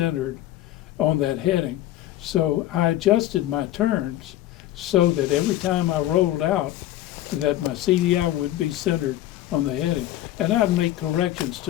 on that heading. So I adjusted my turns so that every time I rolled out, that my CDI would be centered on the heading. And I'd make corrections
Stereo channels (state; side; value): quieter; right; 14.0 dB